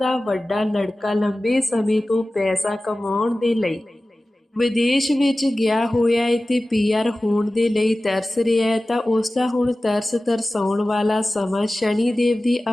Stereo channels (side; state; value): both; normal; correlation 0.96